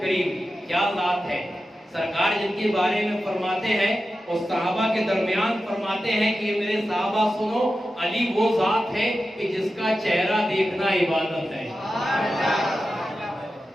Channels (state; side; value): normal; both; correlation 0.92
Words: کیا ذات ہے، سرکار جن کے بارے میں فرماتے ہیں اور صحابہ کے درمیان فرماتے ہیں کہ میرے صحابہ سنو، علی وہ ذات ہے کہ جس کا چہرہ دیکھنا عبادت ہے۔